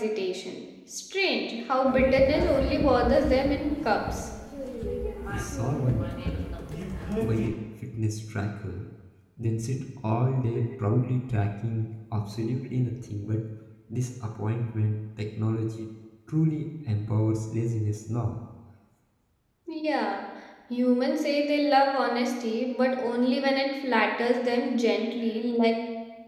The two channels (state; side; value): identical; both; correlation 1.00